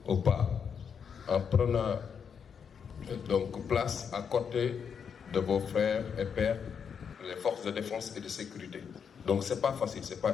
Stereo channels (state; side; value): quieter; right; 7.0 dB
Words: au pas en prenant donc place à côté de vos frères et pères, les forces de défense et de sécurité. Donc c'est pas facile, c'est pas